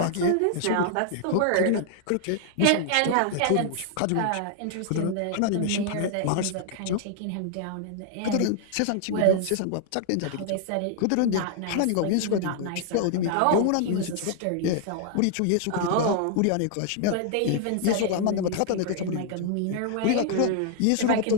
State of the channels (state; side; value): different; both; correlation 0.00